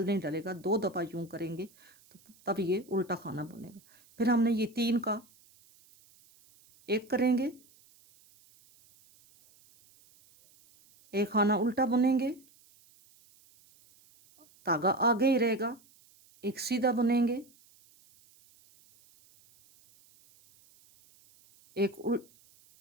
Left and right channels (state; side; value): noise; right; hiss, 29 dB below the sound